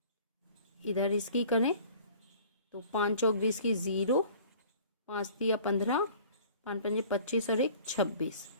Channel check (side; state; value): both; inverted; correlation -0.49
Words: इधर इसकी करें तो 5 चौक 20 की 0, 5 दिया 15, 5 पंजे 25 और 1 26।